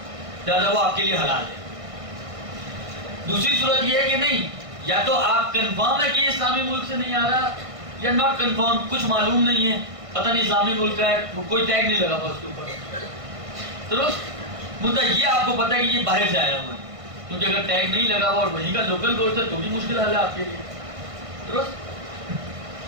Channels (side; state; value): left; late; 1.5 ms